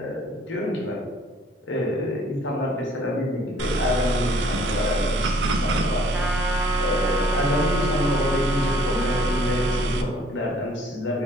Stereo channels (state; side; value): normal; both; correlation 0.59